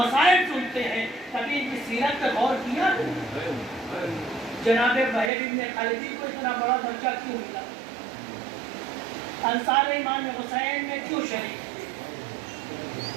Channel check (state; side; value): drops out; left; at 5.3 s